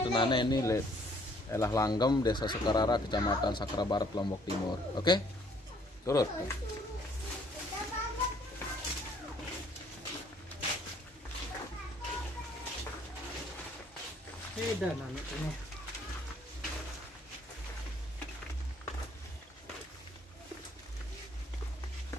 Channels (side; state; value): both; normal; correlation 0.62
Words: nane ini le elah Langgem, Desa Sekarara, Kecamatan Sakra Barat, Lombok Timur. Oke, turut. Beda nane ini.